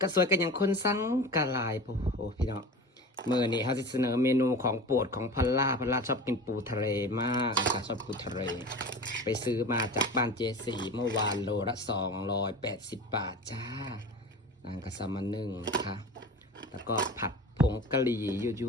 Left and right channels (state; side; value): normal; both; correlation 0.34